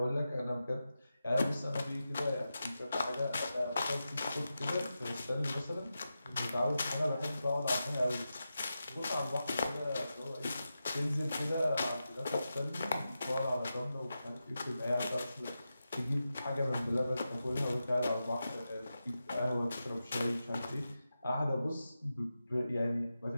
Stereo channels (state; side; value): inverted; both; correlation -0.91